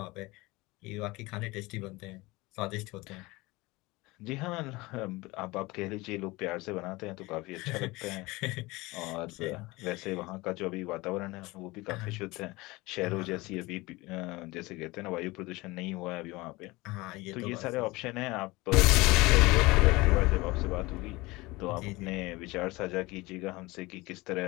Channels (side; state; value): right; quieter; 22.0 dB